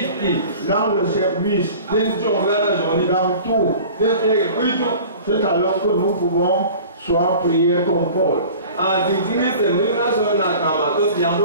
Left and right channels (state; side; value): inverted; both; correlation -0.43